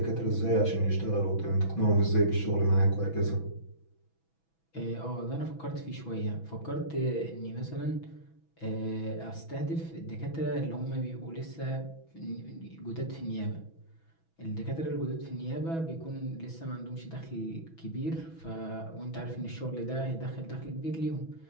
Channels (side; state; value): right; late; 6.1 ms